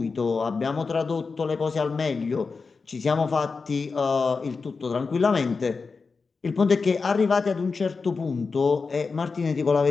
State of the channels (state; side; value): quieter; right; 4.6 dB